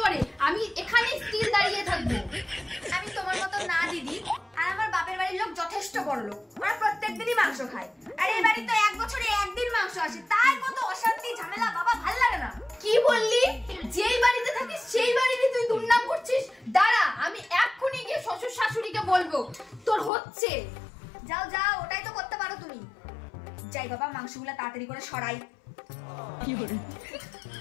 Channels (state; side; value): drops out; right; at 20.1 s